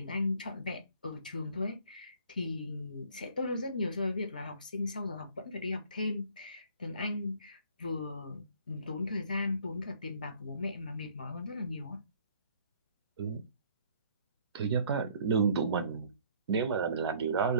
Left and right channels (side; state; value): both; inverted; correlation -0.58